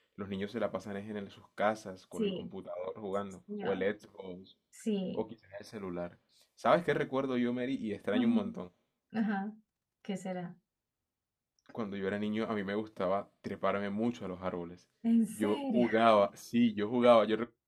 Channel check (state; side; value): identical; both; correlation 1.00